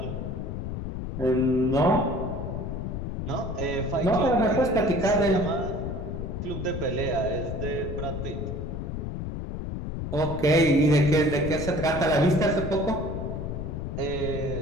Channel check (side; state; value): left; noise; rumble, 5 dB below the sound